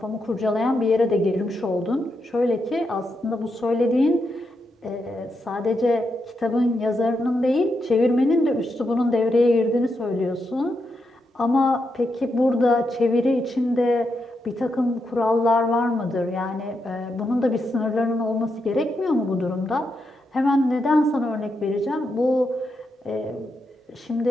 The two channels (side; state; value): both; normal; correlation 0.84